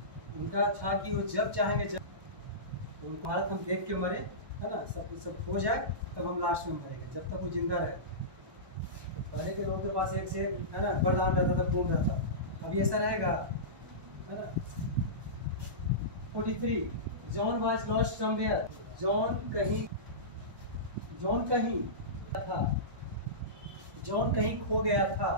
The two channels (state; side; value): late; left; 1.1 ms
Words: उनका था कि वो जब चाहेंगे जब, भारत हम देख के मरे है ना, सब हो जाए तब हम लास्ट में मरेंगे, जब तक वो जिंदा रहे। तो पहले के लोगों के पास एक से एक है ना वरदान रहता था, पूर्ण रहता, अभी ऐसा रहेगा है ना। 43 John was lost somewhere, John कहीं था, जॉन कहीं खो गया था।